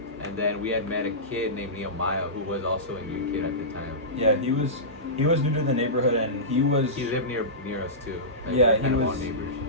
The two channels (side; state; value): both; normal; correlation -0.19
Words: and then we had met a kid named Nehemiah who was also a new kid at the time. Yeah, he was new to the neighborhood, and he lived near us too. Like, Yeah, we were he kind of all was- neighbors.